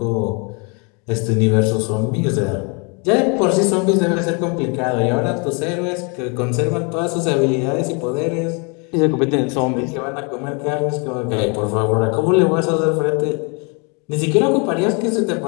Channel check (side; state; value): right; quieter; 33.4 dB